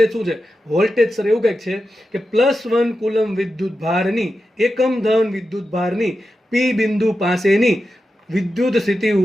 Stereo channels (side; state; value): both; normal; correlation 0.90